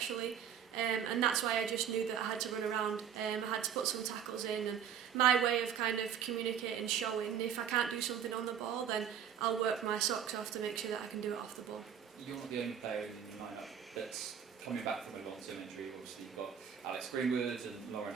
And that's why I just knew that I had to run around, I had to put some tackles in, and my way of kind of communicating, showing, if I can't do something on the ball, then I'll work my socks off to make sure that I can do it off the ball. You're not the only player in the lineup that's coming back from a long-term injury. Obviously you've got Alex Greenwood and Lauren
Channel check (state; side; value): quieter; left; 8.5 dB